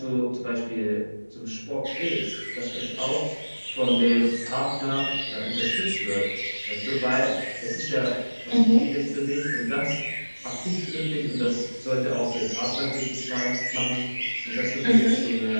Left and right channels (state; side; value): inverted; both; correlation -1.00